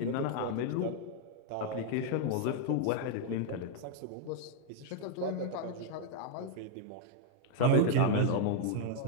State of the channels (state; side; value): different; both; correlation 0.00